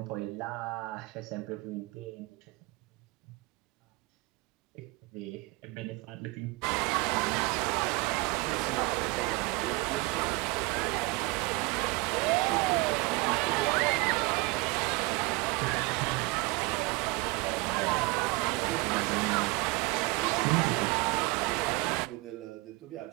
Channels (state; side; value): quieter; left; 24.9 dB